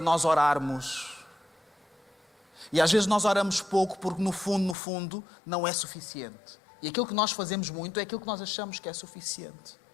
orarmos. E às vezes nós oramos pouco porque no fundo, não é suficiente. E aquilo que nós fazemos muito é aquilo que nós achamos que é suficiente.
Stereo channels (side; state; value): right; drops out; at 4.8 s